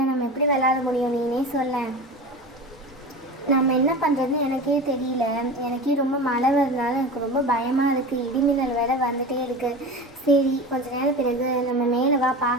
நம்ம எப்படி விளையாட முடியும்? நீனே சொல்ல. நம்ம என்ன பண்ணுறதுன்னு எனக்கே தெரியல. எனக்கே ரொம்ப மழை வருதுனால எனக்கு ரொம்ப பயமாக இருக்குது. இடிமின்னல் வேலை வந்துகிட்டே இருக்குது. சரி, கொஞ்ச நேரம் பிறகு நம்ம மேலே வா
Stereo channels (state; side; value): normal; both; correlation 0.30